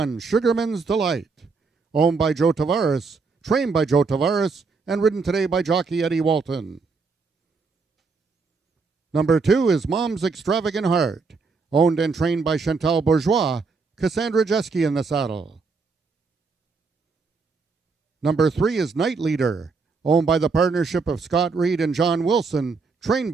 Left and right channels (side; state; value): left; quieter; 4.5 dB